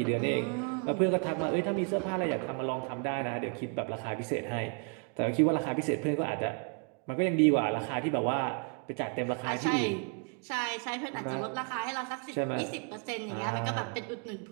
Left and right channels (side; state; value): left; quieter; 39.2 dB